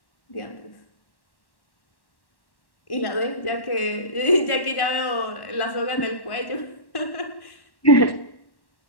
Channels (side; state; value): right; late; 1.1 ms